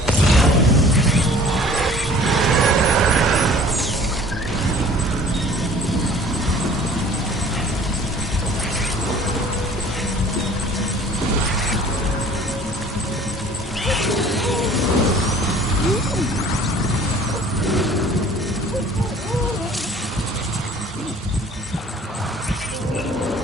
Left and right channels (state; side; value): normal; both; correlation 0.50